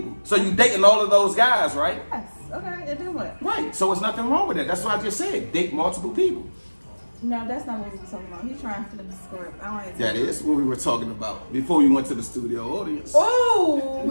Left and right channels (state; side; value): inverted; both; correlation -1.00